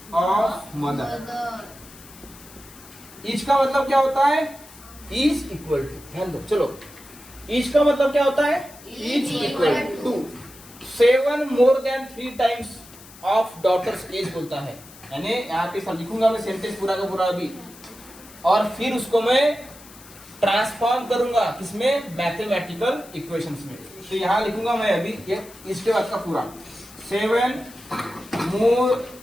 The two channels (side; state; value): left; noise; hiss, 20 dB below the sound